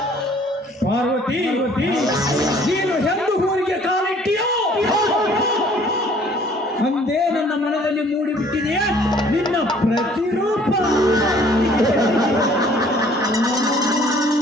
ಪಾರ್ವತಿ, ನೀನು ಎಂದು ಊರಿಗೆ ಕಾಲಿಟ್ಟಿಯೋ ಅಂದೇ ನನ್ನ ಮನದಲ್ಲಿ ಮೂಡಿಬಿಟ್ಟಿದೆಯೇ ನಿನ್ನ ಪ್ರತಿರೂಪ.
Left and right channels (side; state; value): both; normal; correlation 0.56